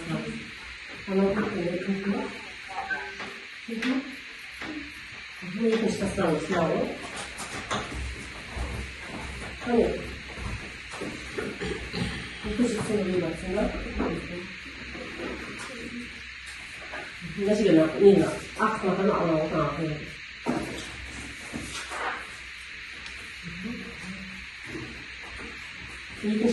Ama kırkları kırklar. Bu ikinci tasarım sınavı. Hani ikinci sınavı baksana. Nasıl gelen? Nina. Akmadan alalım. İkinci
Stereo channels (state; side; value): identical; both; correlation 1.00